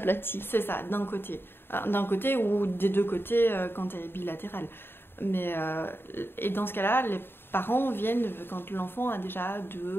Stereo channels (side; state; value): right; late; 0.11 ms